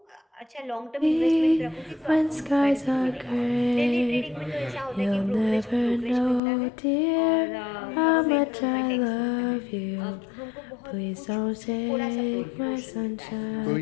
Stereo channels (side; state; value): right; drops out; at 6.4 s